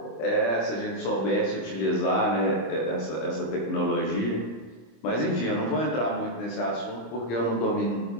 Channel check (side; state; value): right; late; 26 ms